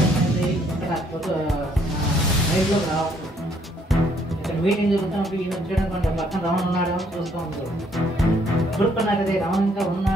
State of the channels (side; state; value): both; normal; correlation 0.67